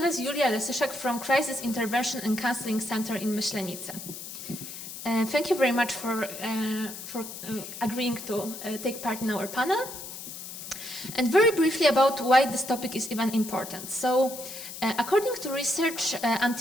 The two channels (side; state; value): left; noise; hiss, 10 dB below the sound